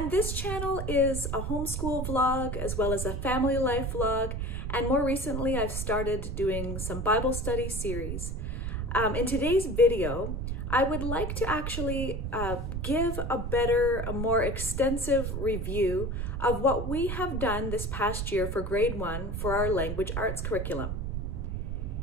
this channel is a homeschool vlog as well as a family life vlog, and more recently I've started doing some Bible study series. In today's video, I would like to actually give a more extensive review of what we have done this past year for grade 1 for our language arts curriculum.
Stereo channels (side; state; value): right; noise; rumble, 3 dB below the sound